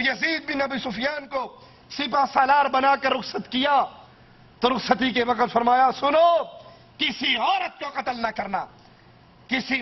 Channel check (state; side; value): identical; both; correlation 1.00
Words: بن ابی سفیان کو سپہ سالار بنا کر رخصت کیا تو رخصتی کے وقت فرمایا سنو، کسی عورت کو قتل نہ کرنا، کسی